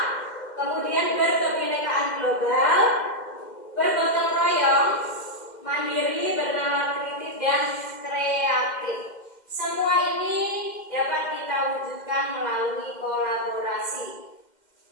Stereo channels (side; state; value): right; late; 2.1 ms